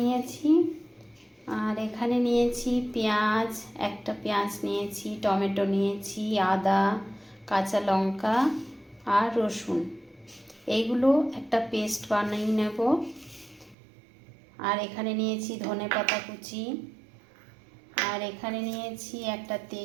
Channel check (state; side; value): drops out; left; at 13.8 s